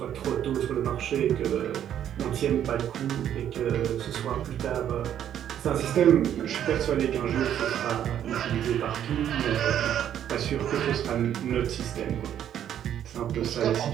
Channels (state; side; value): quieter; left; 10.2 dB